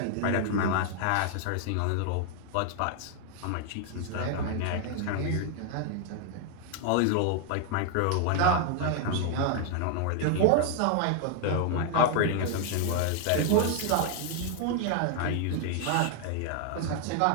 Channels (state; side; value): different; both; correlation 0.00